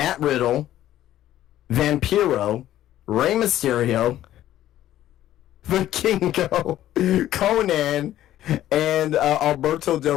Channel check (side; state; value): right; quieter; 13.0 dB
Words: Riddle, Vampiro, Rey Mysterio, Vikingo, Conan, and Alberto Del